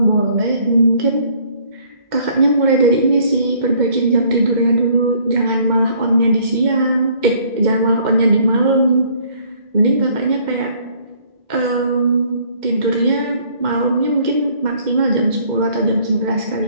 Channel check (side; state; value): left; late; 2.1 ms